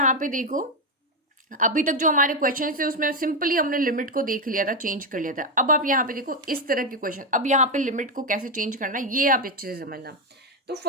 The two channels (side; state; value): both; normal; correlation 0.06